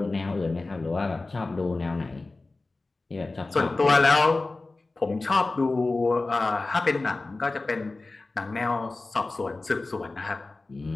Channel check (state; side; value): quieter; right; 3.3 dB